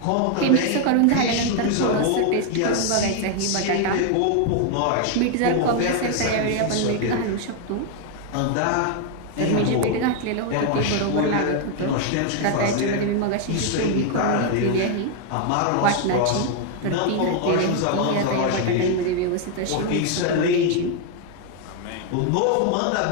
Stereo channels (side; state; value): both; different; correlation 0.00